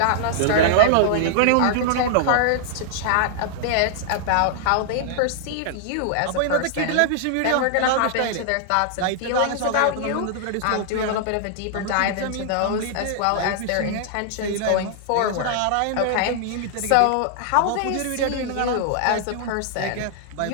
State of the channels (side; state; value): both; different; correlation -0.01